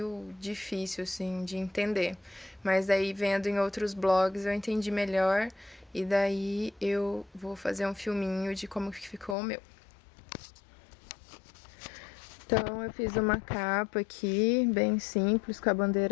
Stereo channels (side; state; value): right; drops out; at 9.3 s